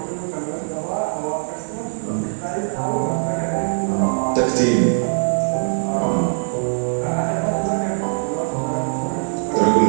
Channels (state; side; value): silent; left; 64 dB below the other